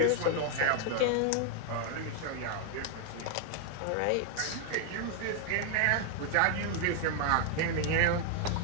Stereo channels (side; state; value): both; different; correlation 0.00